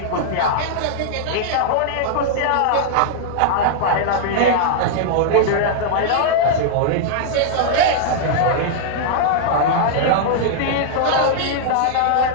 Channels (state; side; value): different; both; correlation -0.01